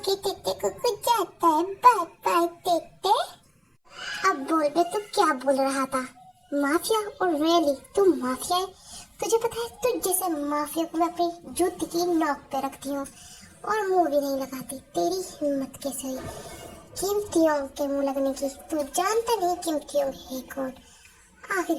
तेते, कुकू जाता है, बाय बाय तेते। अब बोल बे, तू क्या बोल रहा था? माफिया? और रियली तू माफिया है? तुझे पता है, तुझ जैसे माफिया को मैं अपनी जूती की नोक पे रखती हूँ और मुंह भी नहीं लगाती। तेरी हिम्मत कैसे हुई कीमतियों के मुंह लगने की? तू जानता नहीं कीमतियों है कौन?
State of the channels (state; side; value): identical; both; correlation 1.00